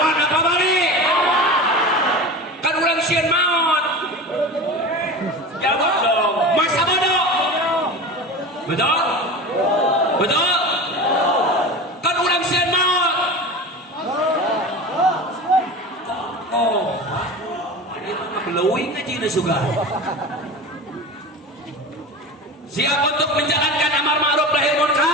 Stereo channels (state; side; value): normal; both; correlation 0.31